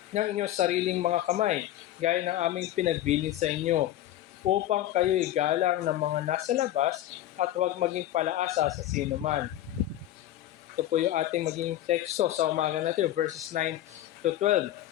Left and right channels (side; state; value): right; quieter; 13.4 dB